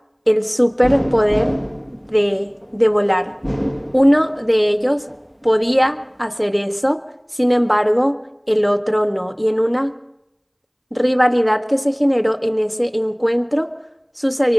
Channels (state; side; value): identical; both; correlation 1.00